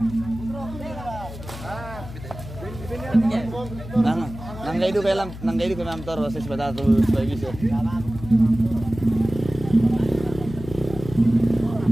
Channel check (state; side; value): noise; left; hum, 12 dB below the sound